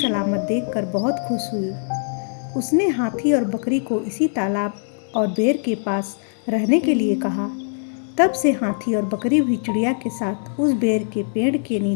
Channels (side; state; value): right; silent; digital silence